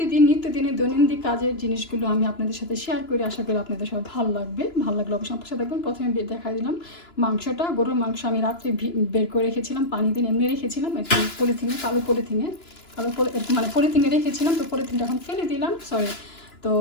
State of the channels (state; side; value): late; right; 2.9 ms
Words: নিত্যদিনের দৈনন্দিন কাজের জিনিসগুলো আমি আপনাদের সাথে শেয়ার করি। আশা করি আপনাদের সব ভালো লাগবে। ভালো লাগলে অবশ্যই আমার সাথে দেখবেন। প্রথমে দেখা দিলাম মাংসটা, গরুর মাংস আমি রাত্রে বের করে রেখেছিলাম, পানি দিয়ে এমনি রেখেছিলাম একটু পলিথিনে, মানে পলিথিনে রেখেছিলাম। তো পলিথিনটা এখন ফেলে দিলাম, সরি। তো